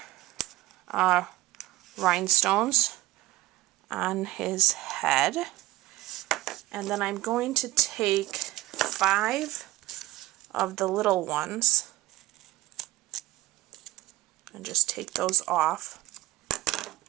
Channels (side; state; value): left; quieter; 17.7 dB